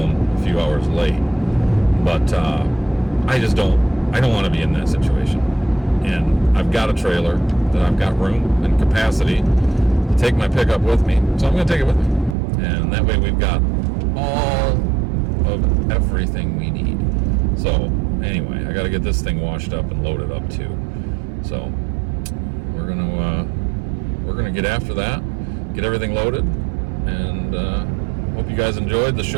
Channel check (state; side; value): drops out; left; at 12.4 s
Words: a few hours late. But I don't want to be in that situation. And I've got a trailer that I've got room and capacity to take my pickup with me, so I'm going to take it with me. And that way we've got all of everything we need. So anyway, I got to get this thing washed up and loaded up too. So we're gonna get after that, get everything loaded, and hope you guys enjoyed the